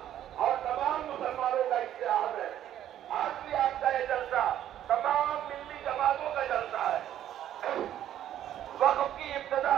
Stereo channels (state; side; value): quieter; left; 11.4 dB